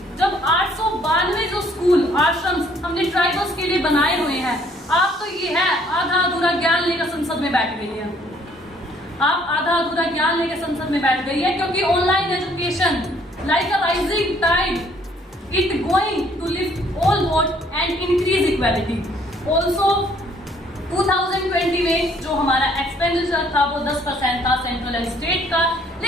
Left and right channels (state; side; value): normal; both; correlation 0.62